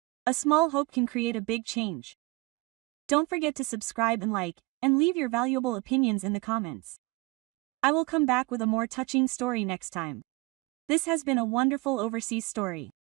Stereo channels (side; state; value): left; quieter; 23.0 dB